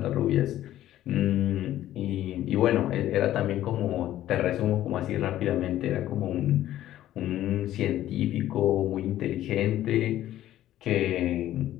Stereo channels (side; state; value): right; quieter; 13.2 dB